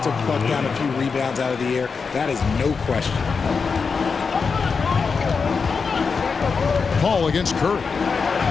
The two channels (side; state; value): right; quieter; 5.2 dB